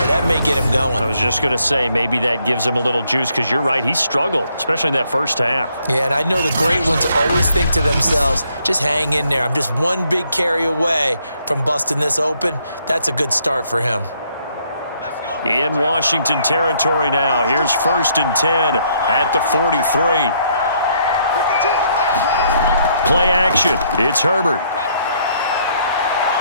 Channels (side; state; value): both; inverted; correlation -0.70